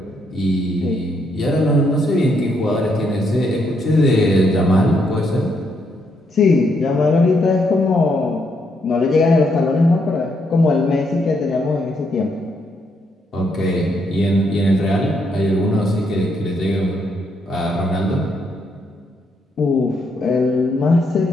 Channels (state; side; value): normal; both; correlation 0.76